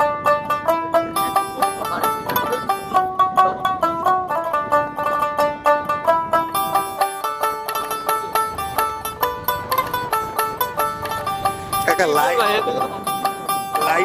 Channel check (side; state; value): both; identical; correlation 1.00